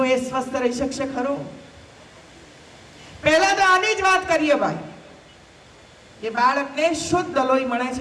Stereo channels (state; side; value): identical; both; correlation 1.00